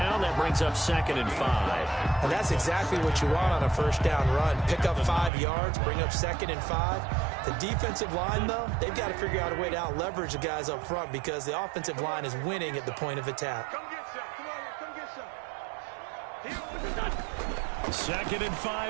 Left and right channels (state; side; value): drops out; left; at 5.3 s